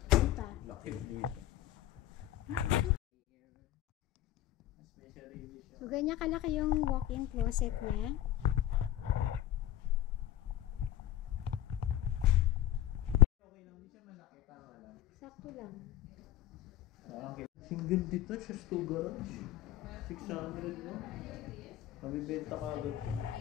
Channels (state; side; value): quieter; right; 13.0 dB